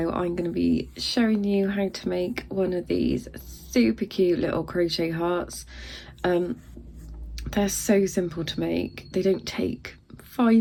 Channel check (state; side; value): identical; both; correlation 1.00